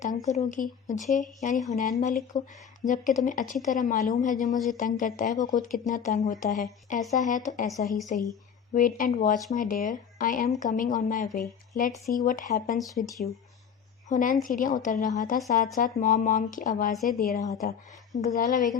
تنگ کرو گی، مجھے یعنی حنین ملک کو، جبکہ تمہیں اچھی طرح معلوم ہے جو مجھے تنگ کرتا ہے وہ خود کتنا تنگ ہوتا ہے۔ ایسا ہے تو ایسا ہی صحیح۔ Wait and watch my dear, I am coming on my way, let's see what happens with you. Hunain سیڑھیاں اتر رہا تھا، ساتھ ساتھ مام مام کی آوازیں دے رہا تھا۔ غزالہ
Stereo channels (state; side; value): quieter; right; 7.5 dB